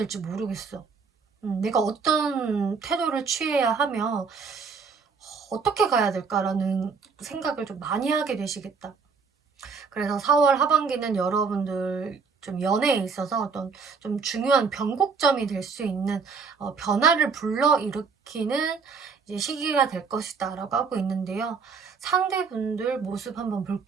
모르겠어. 내가 어떤 태도를 취해야 하며 어떻게 가야 될까라는 생각을 좀 많이 하게 되시겠다. 그래서 4월 하반기는 여러분들 좀 연애에 있어서 어떤 좀 중요한 변곡점이 될 수 있는 변화를 불러일으키는 이제 시기가 될 것이다 라고 하고 있는데요. 상대분들 모습 한번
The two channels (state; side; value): quieter; left; 5.2 dB